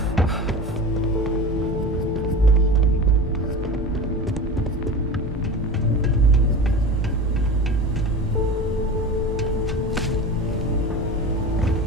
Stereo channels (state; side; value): normal; both; correlation 0.31